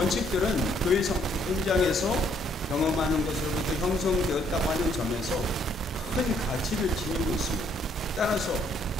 교회 현장에서 경험하는 것으로부터 형성되었다고 하는 점에서 큰 가치를 지니고 있습니다. 따라서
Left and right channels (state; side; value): normal; both; correlation 0.67